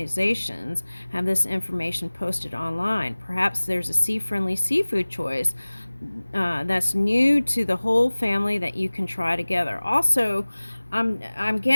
have this information posted online. Perhaps there's a sea-friendly seafood choice that's new to the whole family that you can try together. Also, I'm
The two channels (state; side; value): inverted; both; correlation -1.00